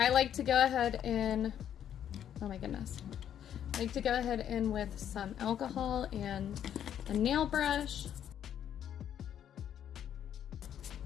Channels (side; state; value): right; quieter; 9.8 dB